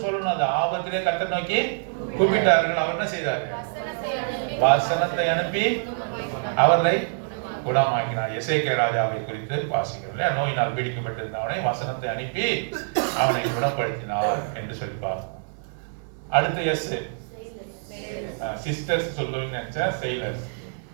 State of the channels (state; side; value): silent; left; digital silence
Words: சொல்லணும். அந்த ஆபத்திலே கர்த்தரை நோக்கி கூப்பிட்டார்கள். அவர் என்ன செய்தாரு? வசனத்தை அனுப்பி அவர்களை குணமாக்கினார். எசேக்கியா ராஜாவை குறித்து வாசிக்கிறோம். நோயினால் பீடிக்கப்பட்டிருந்தவனை வசனத்தை அனுப்பி அவனை குணப்படுத்தினார் என்று சொல்லிப்பார். அடுத்து எஸ் சிஸ்டர்ஸ் சொல்லுவீங்க நினைச்சா செயிலர்ஸ்.